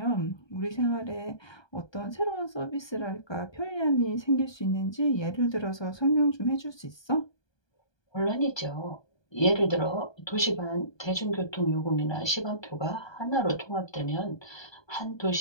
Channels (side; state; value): right; late; 1.2 ms